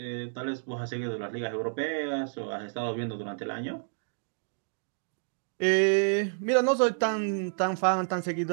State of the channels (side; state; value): left; silent; digital silence